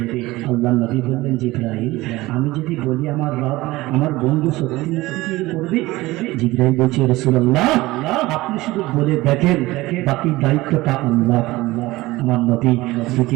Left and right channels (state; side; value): quieter; left; 19.2 dB